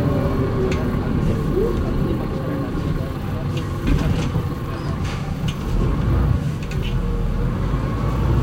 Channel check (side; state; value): both; identical; correlation 1.00